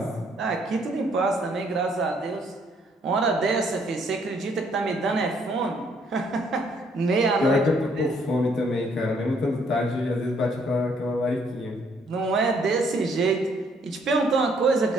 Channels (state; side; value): normal; both; correlation 0.67